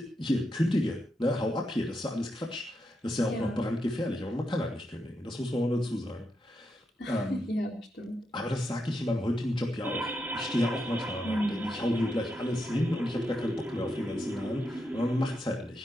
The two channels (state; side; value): normal; both; correlation 0.84